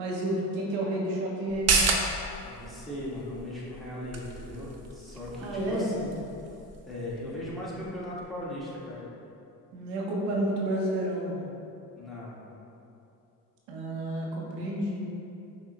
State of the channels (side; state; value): both; normal; correlation 0.27